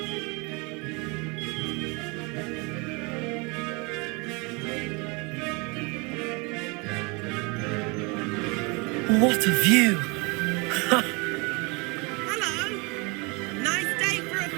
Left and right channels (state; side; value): quieter; left; 29.1 dB